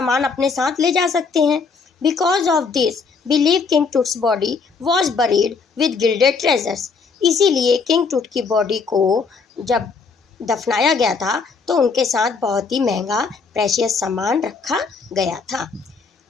अपने साथ ले जा सकते हैं। Because of this believe king Tut's body was buried with gilded treasures. इसीलिए किंग टूट की बॉडी को जब दफनाया गया था तो उनके साथ बहुत ही महंगा प्रेशियस सामान रखा गया था।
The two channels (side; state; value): right; quieter; 4.9 dB